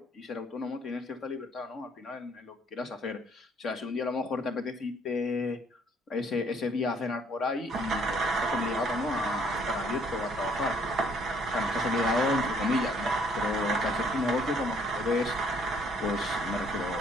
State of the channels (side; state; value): both; normal; correlation 0.63